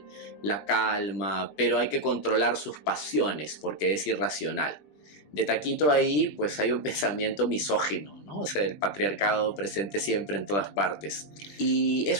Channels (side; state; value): right; late; 20 ms